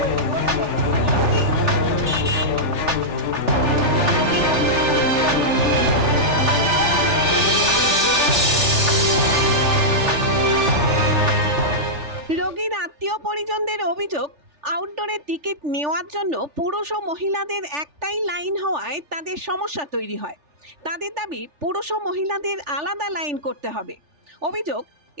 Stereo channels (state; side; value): late; left; 3.4 ms